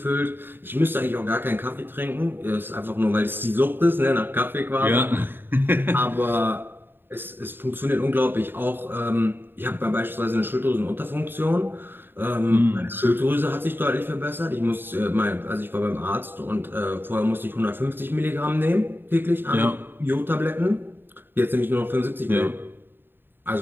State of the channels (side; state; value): left; late; 0.098 ms